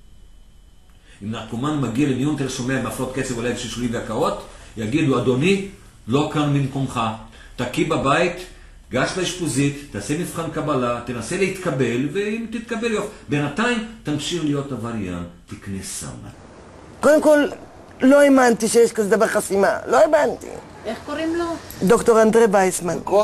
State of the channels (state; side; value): identical; both; correlation 1.00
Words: אם נרקומן מגיע למיון תל השומע עם הפרעות קצב בלב שלשולים והקאות, יגידו, אדוני, לא כאן במקומך, תקי בבית, גש לאשפוזית, תעשה מבחן קבלה, תנסה להתקבל, ואם תתקבל יופי. בינתיים תמשיך להיות עבריין, תקנה סם. קודם כל, לא האמנתי שיש כזה דבר חסימה, לא האמנתי. איך קוראים לו? דוקטור אנדרי וייסמן.